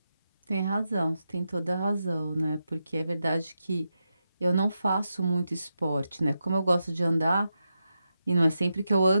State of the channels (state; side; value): inverted; both; correlation -0.87